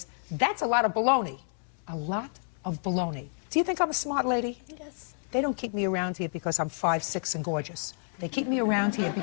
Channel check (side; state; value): right; silent; 58 dB below the other